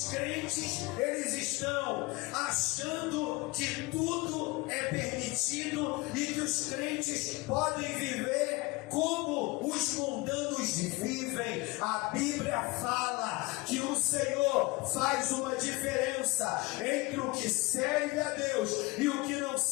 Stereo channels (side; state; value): right; quieter; 23.3 dB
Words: crentes, eles estão achando que tudo é permitido e que os crentes podem viver como os mundanos vivem. A Bíblia fala que o Senhor faz uma diferença entre o que serve a Deus e o que não